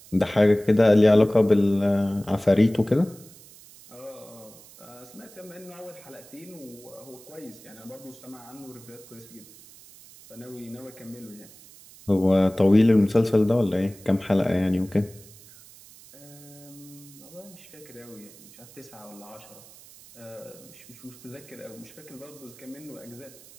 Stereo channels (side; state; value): right; noise; hiss, 21 dB below the sound